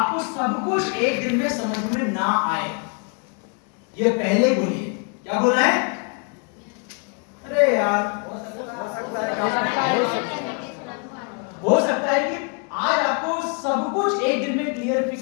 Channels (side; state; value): right; quieter; 38.2 dB